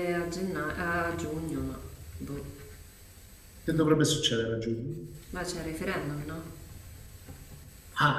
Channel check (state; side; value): identical; both; correlation 1.00